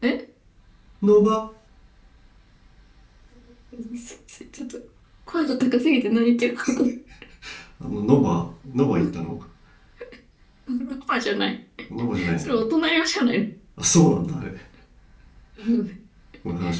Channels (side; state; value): both; identical; correlation 1.00